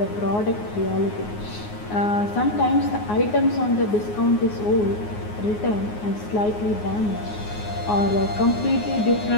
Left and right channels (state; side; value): late; right; 9.6 ms